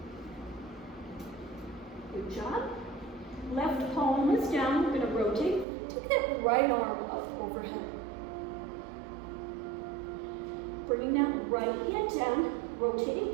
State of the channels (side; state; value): left; drops out; at 5.7 s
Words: Good job. Left palm is down, we're going to rotate. Take that right arm up overhead. Bringing that right hand down,